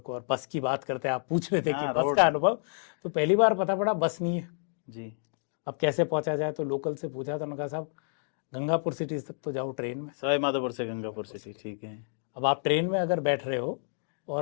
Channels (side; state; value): right; silent; digital silence